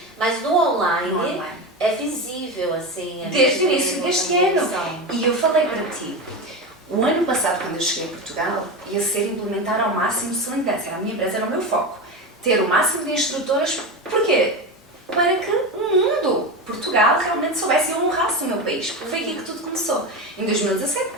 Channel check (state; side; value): normal; both; correlation 0.21